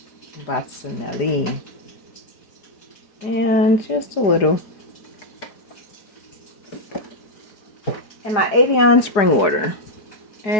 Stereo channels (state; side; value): late; right; 4.9 ms